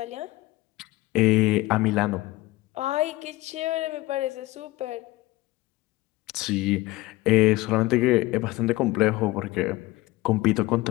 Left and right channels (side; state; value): right; quieter; 19.3 dB